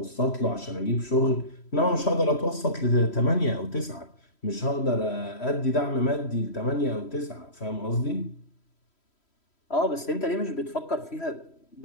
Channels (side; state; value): right; late; 3.1 ms